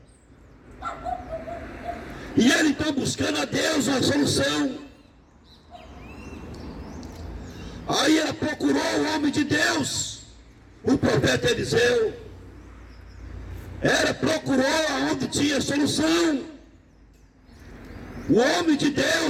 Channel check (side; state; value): both; identical; correlation 1.00